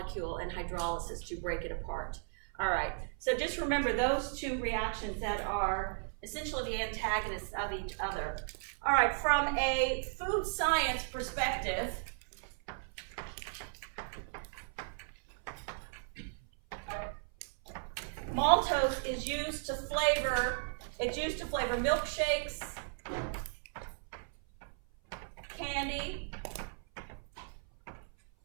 and hydrolysis to break it apart. All right, so just remember those two reactions that are essentially the antagonists of each other. All right, from a food science perspective, maltose is used to flavor, milkshakes, candy,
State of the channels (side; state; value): left; silent; 54 dB below the other